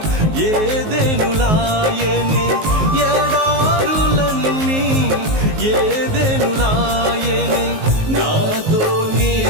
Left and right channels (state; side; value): late; left; 19 ms